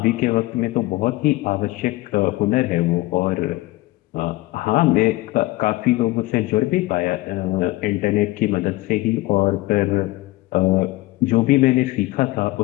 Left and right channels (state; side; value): quieter; right; 19.1 dB